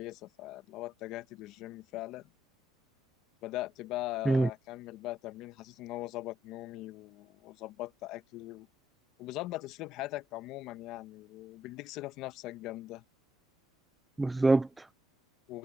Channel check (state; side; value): normal; both; correlation 0.77